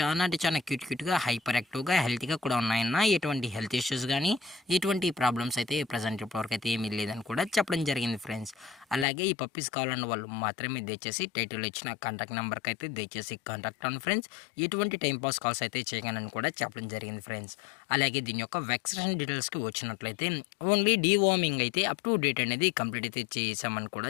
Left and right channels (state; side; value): drops out; right; at 9.1 s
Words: అంటే చాలా క్యూట్గా హైపర్ యాక్టివ్గా హెల్తీగా కూడా ఉన్నాయన్న. ఎటువంటి హెల్త్ ఇష్యూస్ కానీ ఎటువంటి ప్రాబ్లమ్స్ అయితే ప్రజెంట్ ఇప్పటివరకు అయితే ఏమీ లేదని కూడా చెప్పడం జరిగింది ఫ్రెండ్స్. అలాగే ఈ పప్పీస్ కావాలన్న వాళ్ళు మాత్రమే దయచేసి టైటిల్ ఇచ్చిన కాంటాక్ట్ నెంబర్కి అయితే దయచేసి కాంటాక్ట్ అవ్వండి ఫ్రెండ్స్. ఎటువంటి టైంపాస్ కాల్స్ అయితే చేయగలని కూడా చెప్పడం జరిగింది ఫ్రెండ్స్. అలాగే దీని యొక్క వ్యాక్సినేషన్ డీటెయిల్స్కి వచ్చినట్లయితే ఓన్లీ డీవార్మింగ్ అయితే అప్ టు డేట్ అనేది కంప్లీట్ అయితే చేసామని కూడా